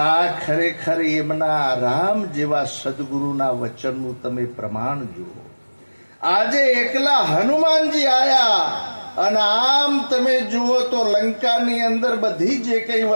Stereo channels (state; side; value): inverted; both; correlation -1.00